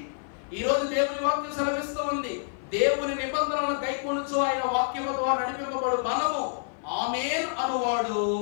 ఈ రోజు దేవుని వాక్యం సెలవిస్తూ ఉంది, దేవుని నిబంధనలను గైకొనుచు ఆయన వాక్యము ద్వారా నడిపింపబడు మనము ఆమేన్ అనువాడు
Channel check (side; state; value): right; silent; 55 dB below the other